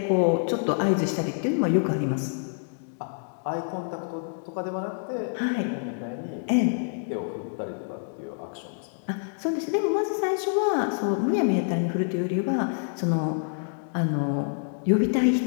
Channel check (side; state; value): right; silent; digital silence